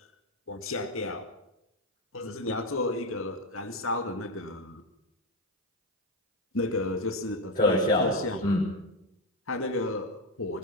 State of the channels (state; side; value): normal; both; correlation 0.10